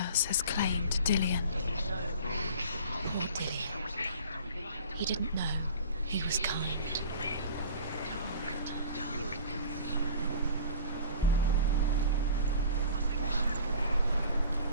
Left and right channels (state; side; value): inverted; both; correlation -0.42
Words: has claimed Dillian. Poor Dillian. He didn't know. He was kind.